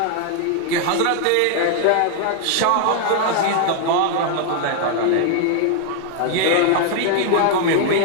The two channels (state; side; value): different; both; correlation 0.00